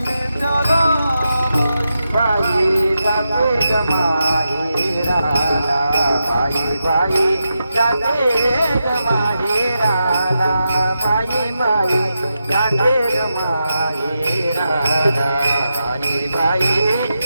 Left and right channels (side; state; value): both; inverted; correlation -0.87